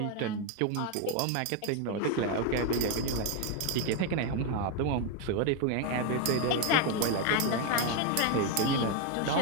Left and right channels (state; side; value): different; both; correlation 0.01